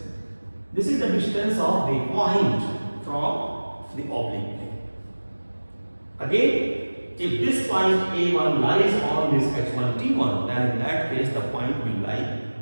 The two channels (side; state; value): both; inverted; correlation -1.00